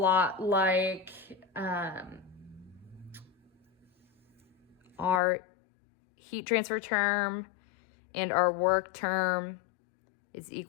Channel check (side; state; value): right; drops out; at 5.2 s